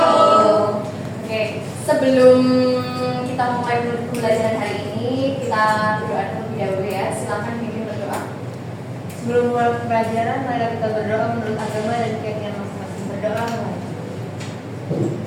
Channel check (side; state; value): both; identical; correlation 1.00